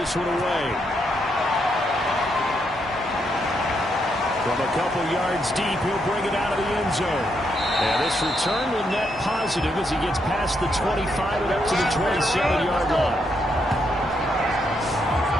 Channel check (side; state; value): both; normal; correlation 0.78